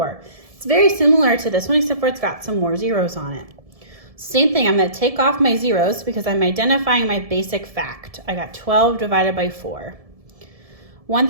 It's very similar to this one, except for it's got some more zeros on it. Same thing, I'm going to take off my zeros because I'm identifying my basic fact. I got 12 divided by 4.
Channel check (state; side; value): late; left; 1.7 ms